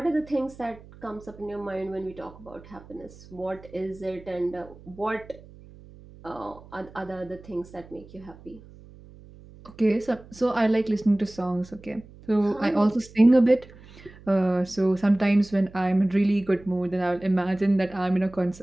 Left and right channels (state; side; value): noise; right; hum, 21 dB below the sound